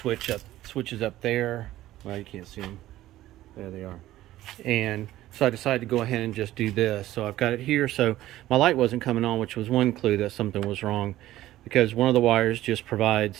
up there. Well, you can't see them. There they are. And so I decided to go ahead and just do this. So I've got it here. So my light wasn't coming on, which was one clue that something was wrong, because one of the wires just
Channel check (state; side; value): quieter; left; 14.8 dB